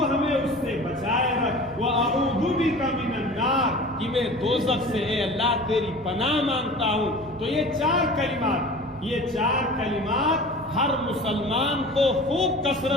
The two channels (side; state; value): both; normal; correlation 0.39